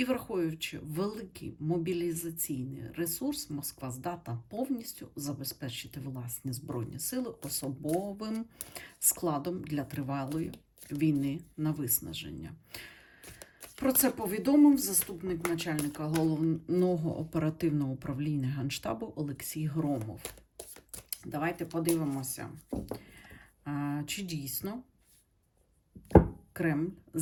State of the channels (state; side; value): identical; both; correlation 1.00